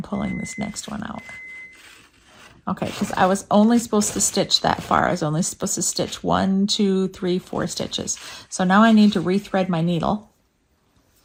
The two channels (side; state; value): both; identical; correlation 1.00